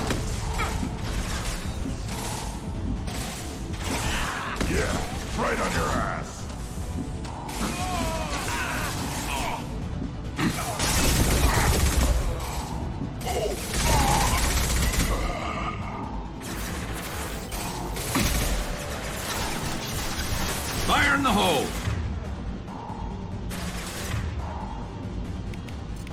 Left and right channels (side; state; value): both; identical; correlation 1.00